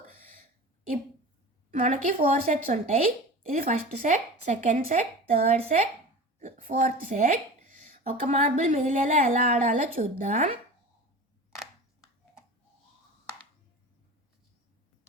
మనకి 4 సెట్స్ ఉంటాయి. ఇది first set, second set, third set, fourth set. ఒక మార్బుల్ మిగిలేలా ఎలా ఆడాలో చూద్దాం.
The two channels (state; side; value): normal; both; correlation 0.34